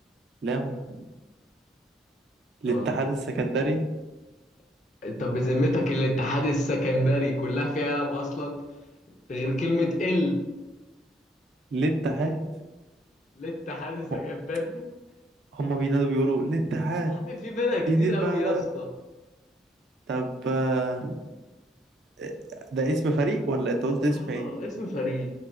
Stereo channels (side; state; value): both; normal; correlation 0.67